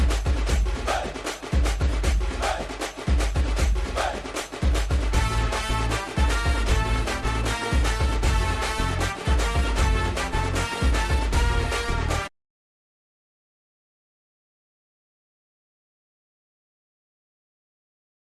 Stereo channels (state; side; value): identical; both; correlation 1.00